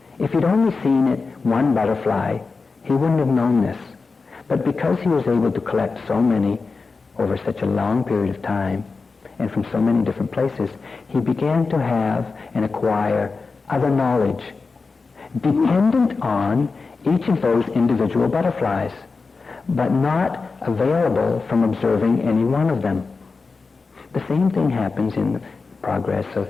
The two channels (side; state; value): right; quieter; 4.3 dB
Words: If he'd only seen it one butterfly, he wouldn't have known this. But because he was able to collect so many over such a long period of time and from so many different places, he began to have and acquire other knowledge dependent on each of those individual butterflies, but not available from observing any one of them. The same thing happens in the progress of